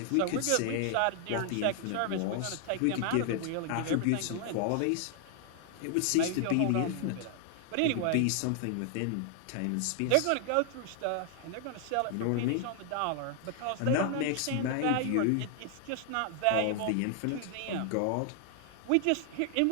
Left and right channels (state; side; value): different; both; correlation 0.00